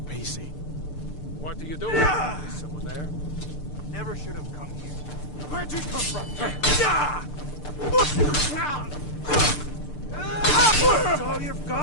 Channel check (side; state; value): right; late; 6.7 ms